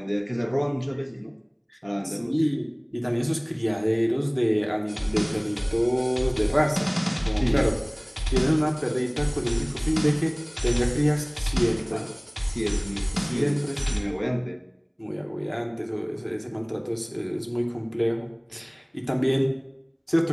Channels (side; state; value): both; identical; correlation 1.00